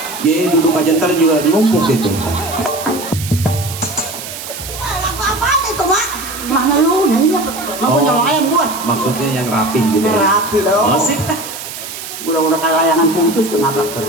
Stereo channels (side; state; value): right; noise; hiss, 10 dB below the sound